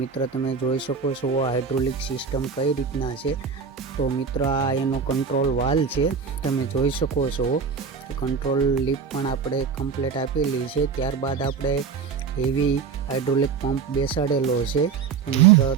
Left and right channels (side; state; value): left; quieter; 5.8 dB